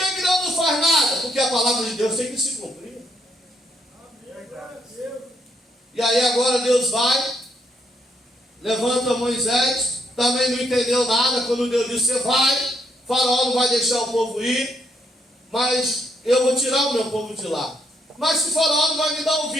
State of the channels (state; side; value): normal; both; correlation 0.74